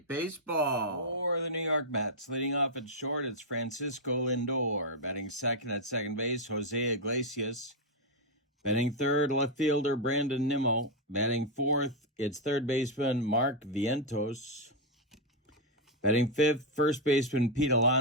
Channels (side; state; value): both; normal; correlation 0.01